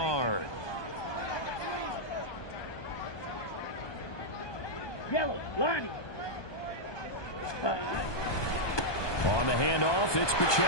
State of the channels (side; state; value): right; late; 1.2 ms